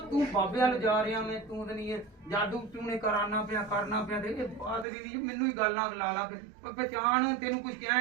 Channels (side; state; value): left; drops out; at 4.9 s